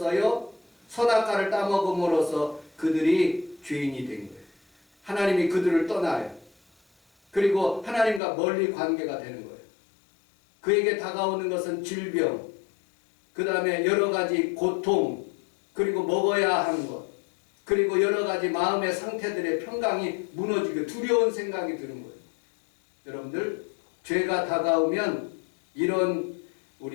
선악과를 따먹음으로써 그들이 죄인이 된 거예요. 하나님이 그들을 떠나요. 그리고 하나님과 멀리 관계가 되는 거예요. 그에게 다가오는 것은 질병, 그 다음에 여러 가지 고통, 그리고 먹어야 하는 것, 그리고 여러 가지 마음의 상태들의 평강이 무너지고 두려운 생각이 드는 거예요. 여러분들, 죄가 다가오면 이런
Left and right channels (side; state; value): right; drops out; at 8.2 s